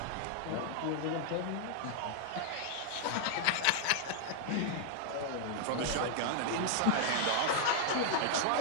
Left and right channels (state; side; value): different; both; correlation -0.01